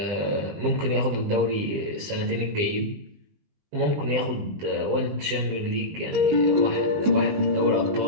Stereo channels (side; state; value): left; late; 20 ms